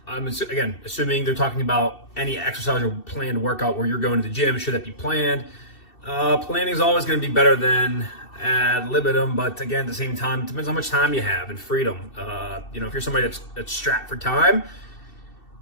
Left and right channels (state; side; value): late; right; 2.7 ms